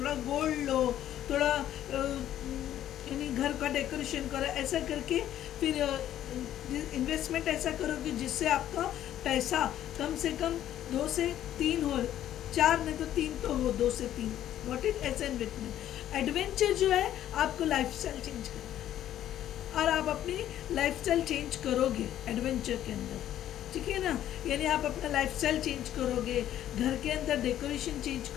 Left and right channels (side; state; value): right; quieter; 11.8 dB